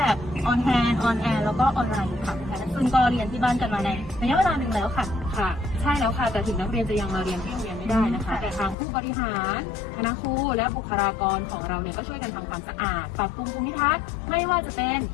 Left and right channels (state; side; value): drops out; right; at 8.8 s